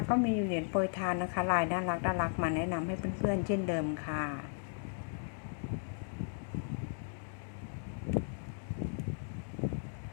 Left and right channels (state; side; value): silent; right; digital silence